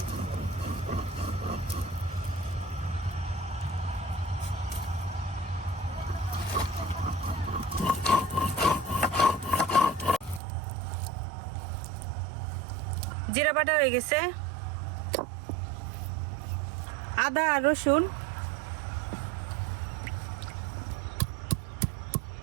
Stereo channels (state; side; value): drops out; left; at 10.4 s